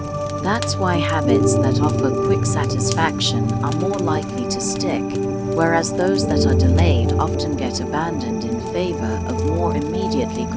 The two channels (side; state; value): both; identical; correlation 1.00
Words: That's why habits that offer quick satisfaction are more likely to stick, whereas those that are delayed often get abandoned in favor of more immediately